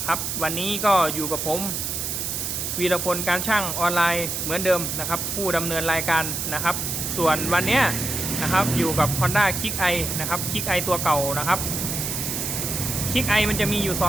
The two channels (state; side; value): noise; right; hiss, 3 dB below the sound